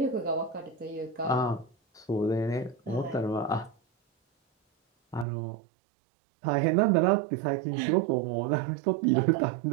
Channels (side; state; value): left; drops out; at 5.2 s